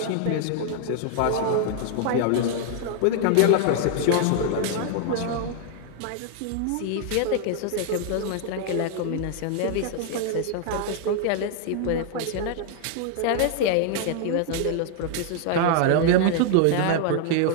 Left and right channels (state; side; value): different; both; correlation 0.00